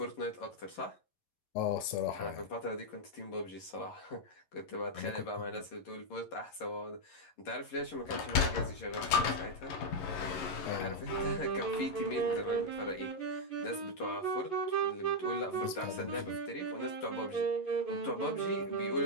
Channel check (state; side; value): late; right; 11 ms